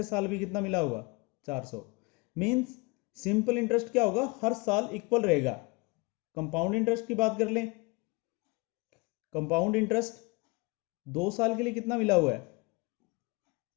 साल भी कितना मिला होगा, 400। मीन्स सिंपल इंटरेस्ट क्या होगा, हर साल इक्वल रहेगा। कंपाउंड इंटरेस्ट की बात कर लें, कंपाउंड इंटरेस्ट 2 साल के लिए कितना मिला हुआ है,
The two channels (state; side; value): quieter; right; 27.3 dB